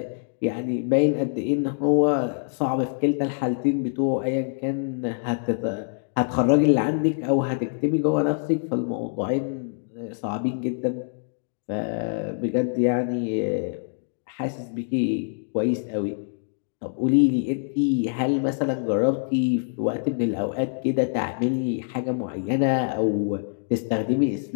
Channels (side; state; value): right; silent; digital silence